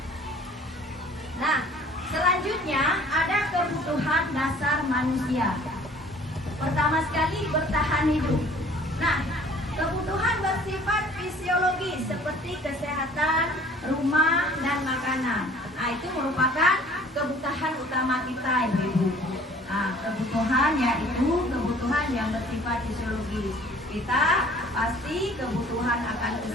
Nah, selanjutnya ada kebutuhan dasar manusia. Pertama sekali bertahan hidup. Nah, kebutuhan bersifat fisiologis seperti kesehatan, rumah, dan makanan. Nah, itu merupakan kebutuhan utama kita, Ibu. Kebutuhan yaitu kebutuhan yang bersifat fisiologis. Kita pasti kebutuhan akan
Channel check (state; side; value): normal; both; correlation 0.52